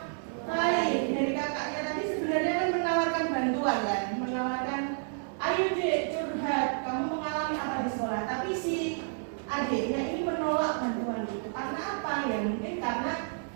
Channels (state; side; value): silent; left; 58 dB below the other